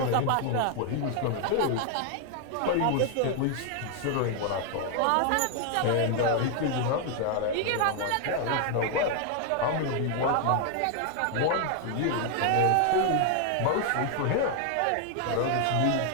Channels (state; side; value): different; both; correlation 0.00